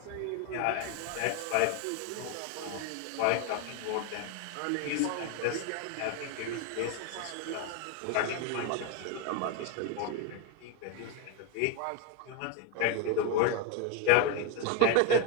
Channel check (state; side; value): different; both; correlation 0.02